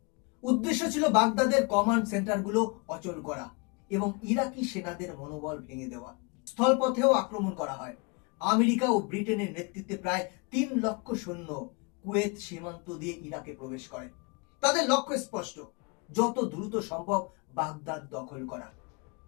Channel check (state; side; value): quieter; right; 30.7 dB